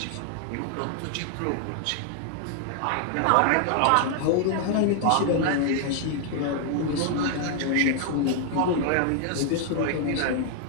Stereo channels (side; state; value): both; different; correlation 0.00